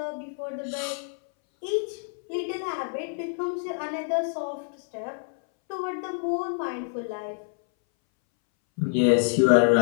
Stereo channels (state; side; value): silent; right; 60 dB below the other